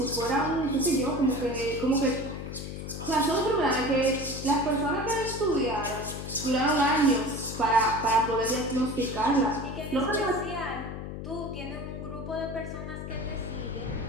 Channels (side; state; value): left; noise; hum, 8 dB below the sound